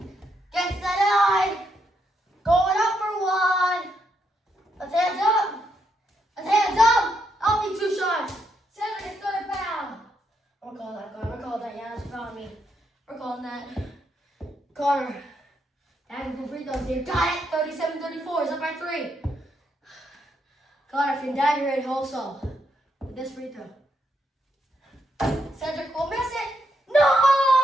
Gets the line. Going up for 1. Let's hands up. Let's hands up. I'll need 2 shots. Cedric is 3rd foul. We're calling that, Connor. We're calling that. Yeah, that's fouling me. We're calling that. Connor. Adding for free throws here. Got it. 37-34. It's up by 3. Connor can dagger it also with this free throw. Cedric will miss it.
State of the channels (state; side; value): normal; both; correlation 0.79